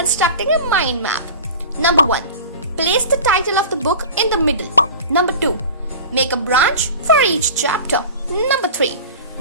a mind map. Number 1. Place the title of the book in the middle. Number 2. Make a branch for each chapter. Number 3.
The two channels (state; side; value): inverted; both; correlation -0.36